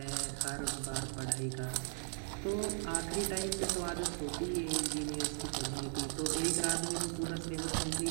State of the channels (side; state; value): left; silent; 53 dB below the other